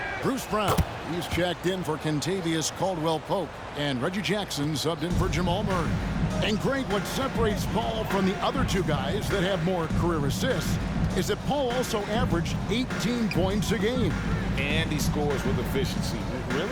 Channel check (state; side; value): identical; both; correlation 1.00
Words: Bruce Brown, he's checked in for Kentavious Caldwell-Pope. And Reggie Jackson subbed in for Jamal Murray. And Greg, what separates Paul from the other two guys that have more career assists is that Paul also averaged 18 points a game. And he scores with efficiency.